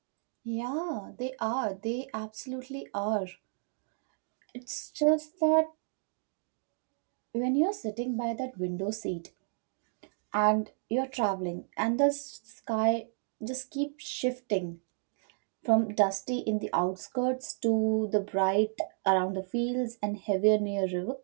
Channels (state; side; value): silent; left; digital silence